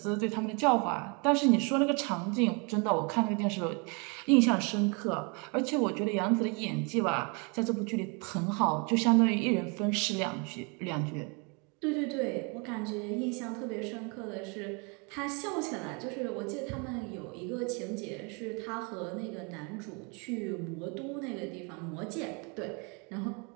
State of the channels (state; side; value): quieter; left; 32.6 dB